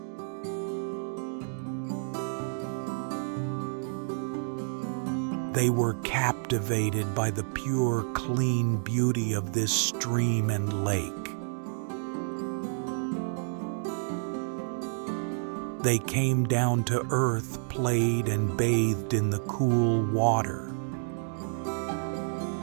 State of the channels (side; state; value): left; silent; digital silence